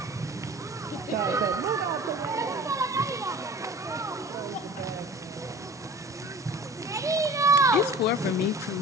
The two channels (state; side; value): normal; both; correlation 0.42